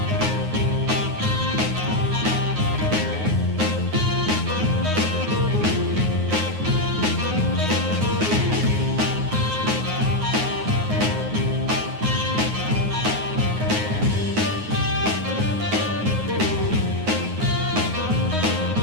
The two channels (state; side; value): late; left; 9.5 ms